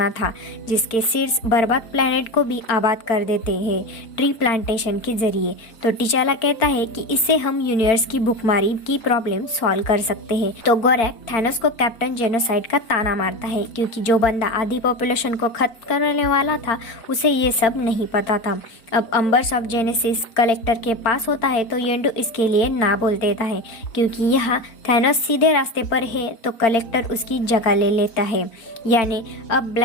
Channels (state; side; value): late; right; 4.4 ms